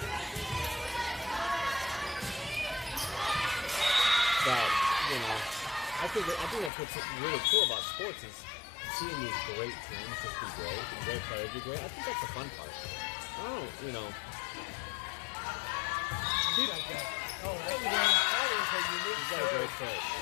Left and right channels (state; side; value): drops out; right; at 6.7 s